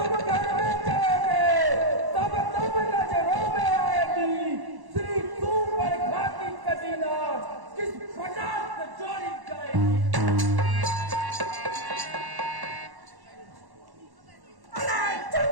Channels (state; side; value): late; left; 1.1 ms